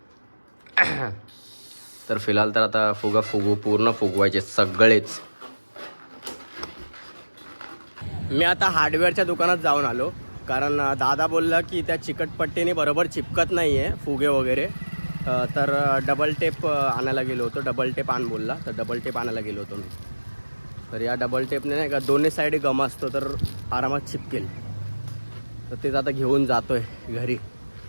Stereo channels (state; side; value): inverted; both; correlation -1.00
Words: तर फिलहाल तर आता पूर्ण फुगवायचे सगळेच. मी आता हार्डवेअरच्या दुकानात जाऊन आलो, कारण दादा बोलला की त्या चिकटपट्टीने बरोबर चिपकत नाही आहे फुगे वगैरे. तर डबल टेप आणायला गेलो होतो. डबल टेप आण बोलला, तर डबल टेप आणायला गेलो होतो मी. तर या डबल टेपने नाही का दोन्ही साईड गम असतो, तर आरामात चिपकेल. तर तेच आता घेऊन जातोय घरी.